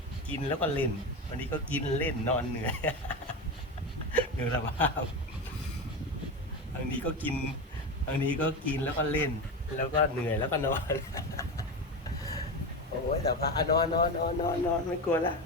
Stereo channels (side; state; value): both; normal; correlation 0.20